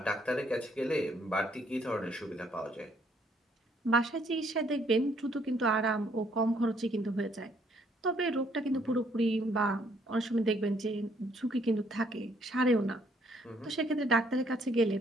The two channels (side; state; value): both; normal; correlation 0.67